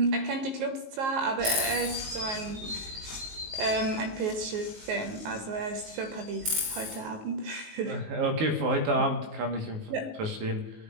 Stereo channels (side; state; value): left; late; 19 ms